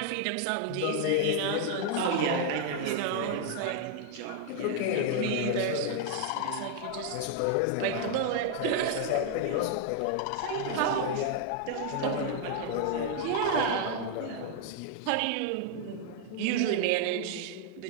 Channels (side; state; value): both; different; correlation 0.00